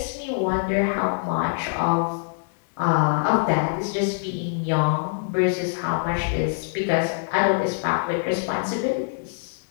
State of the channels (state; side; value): silent; right; 62 dB below the other